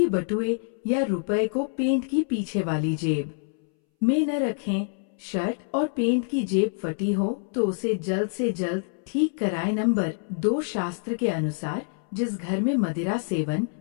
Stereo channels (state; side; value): silent; right; 61 dB below the other